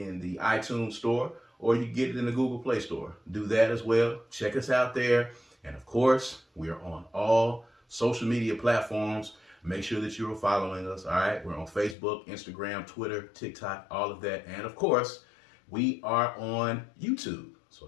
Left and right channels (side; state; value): right; drops out; at 12.0 s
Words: the iTunes store, or you can get it in the Google Play Store. Do that as well. Check us out there. And of course, we are on all social media platforms. Make sure that you are following us, all right? We're on Facebook, Instagram, Twitter, TikTok, all of that. And of course, we are on YouTube. So